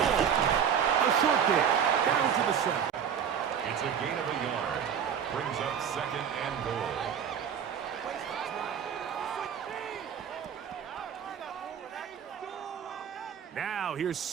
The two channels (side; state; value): left; quieter; 8.1 dB